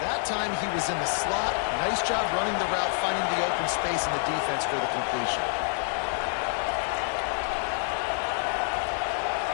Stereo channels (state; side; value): silent; right; 60 dB below the other